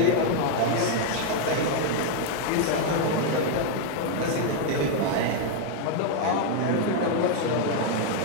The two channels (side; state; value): both; different; correlation 0.00